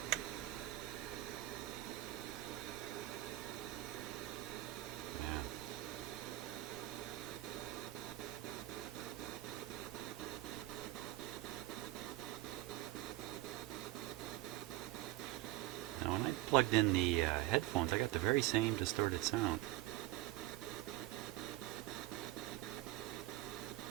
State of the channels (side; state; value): left; quieter; 16.8 dB